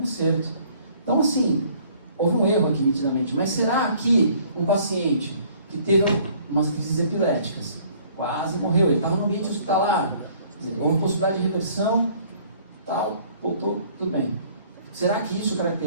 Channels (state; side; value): inverted; both; correlation -0.58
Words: acerto. Então, assim, houve um erro aqui nitidamente, mas será que um paciente que teve umas crises epiléticas, quase morreu, ele estava no ambiente hospitalar, houve possibilidade de reversão, tal, voltou, tudo bem. Será que isso